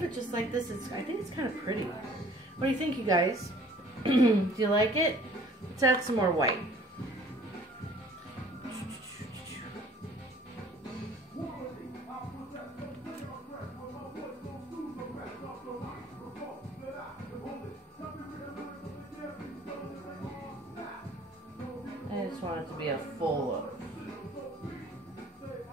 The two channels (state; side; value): normal; both; correlation 0.54